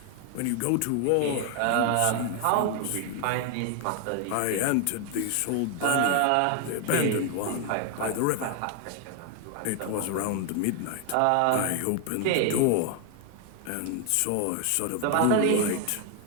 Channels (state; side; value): different; both; correlation 0.01